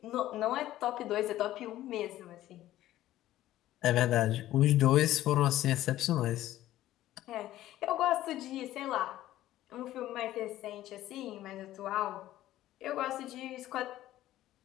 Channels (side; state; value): right; quieter; 14.2 dB